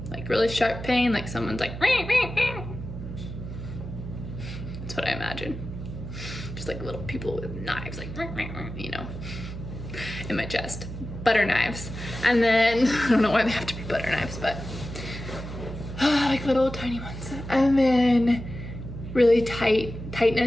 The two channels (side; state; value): right; noise; hum, 9 dB below the sound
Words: like really sharp pain, like someone's like, that's what I imagine. Just like little people with knives, like, you know, in my chest. Butter knives. And then, I don't know why they have to be butter knives, but like little tiny ones. And then really